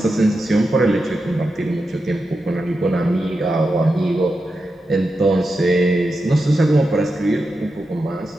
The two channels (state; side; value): normal; both; correlation 0.89